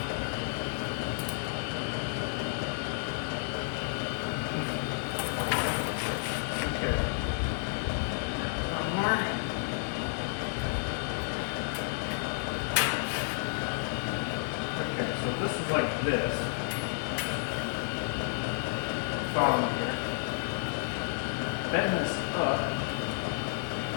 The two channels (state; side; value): silent; right; digital silence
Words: Okay. One more. Okay, so this is like this. Follow me here. Bend this up.